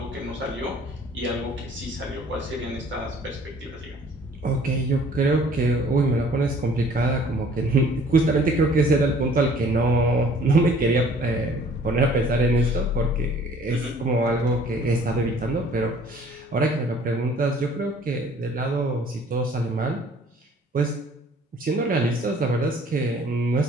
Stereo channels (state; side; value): normal; both; correlation 0.54